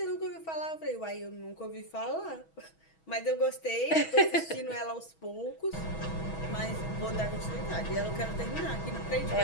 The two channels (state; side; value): late; right; 6.2 ms